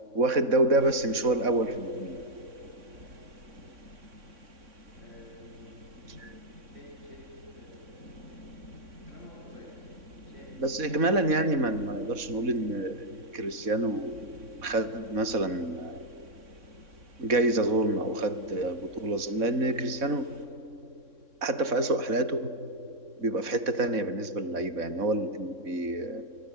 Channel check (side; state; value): left; late; 3.6 ms